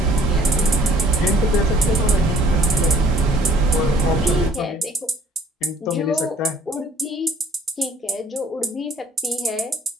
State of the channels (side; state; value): both; normal; correlation 0.58